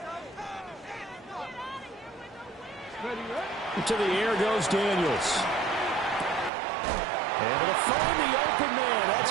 To the air goes Daniels. Able to find the open man. That's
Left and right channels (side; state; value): left; drops out; at 6.5 s